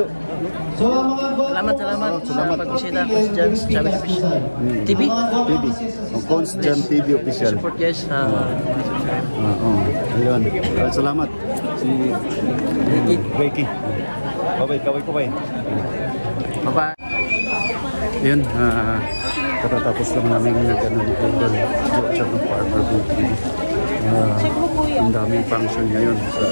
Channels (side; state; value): both; inverted; correlation -1.00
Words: So mga Salamat sa pagbisita Constant TV. Constant TV Official. Support guys sa Ayun. Salamat. Si Ricky. Ricky. Kaway. Bye-bye. Ayun, katatapos lang namin nag-ano ni Idol Jojo ng Farmer Boy TV. Ang daming function ngayon